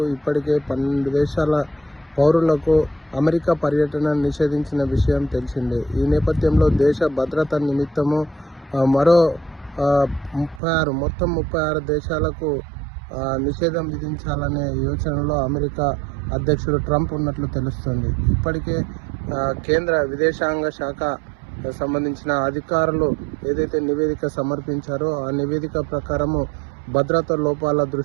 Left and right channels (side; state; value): left; drops out; at 10.6 s